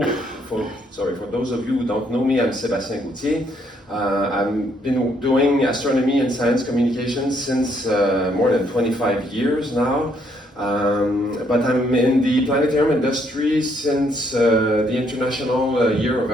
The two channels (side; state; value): both; normal; correlation 0.70